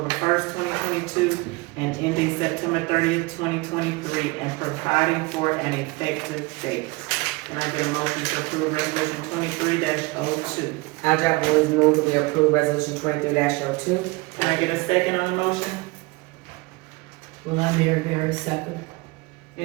1st, 2022, and ending September 30th, 2023, and providing for an effective date. Can I get a motion to approve resolution 23-02? Jacqueline, Ruise move that we approve resolution 23-02. Can I get a second on the motion? Well, I'm very second.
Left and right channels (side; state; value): left; quieter; 24.2 dB